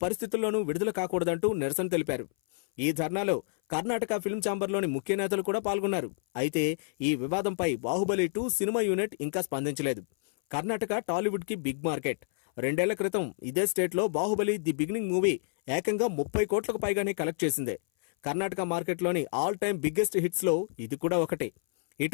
పరిస్థితుల్లోనూ విడుదల కాకూడదంటూ నిరసన తెలిపారు. ఈ ధర్నాలో కర్ణాటక ఫిల్మ్ ఛాంబర్లోని ముఖ్య నేతలు కూడా పాల్గొన్నారు. అయితే ఈ వివాదంపై బాహుబలి 2 సినిమా యూనిట్ ఇంకా స్పందించలేదు. కర్ణాటక టాలీవుడ్ కి బిగ్ మార్కెట్. 2 ఏళ్ల క్రితం ఇదే స్టేట్లో బాహుబలి ది బిగినింగ్ మూవీ ఏకంగా 30 కోట్లకు పైగానే కలెక్ట్ చేసిందే. కర్ణాటక మార్కెట్లోని ఆల్ టైమ్ బిగ్గెస్ట్ హిట్స్ లో ఇది కూడా ఒకటి.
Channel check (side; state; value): right; silent; 59 dB below the other